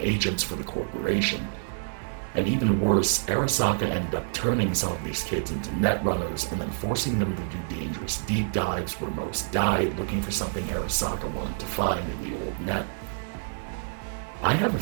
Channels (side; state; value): left; silent; 60 dB below the other